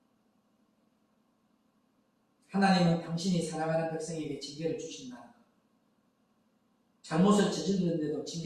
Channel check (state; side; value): identical; both; correlation 1.00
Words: 하나님은 당신이 사랑하는 백성에게 징계를 주신다는 것. 잘못을 저질렀는데도